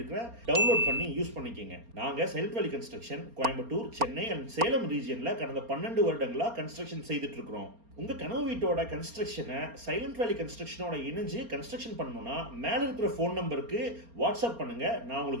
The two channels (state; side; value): late; left; 4.3 ms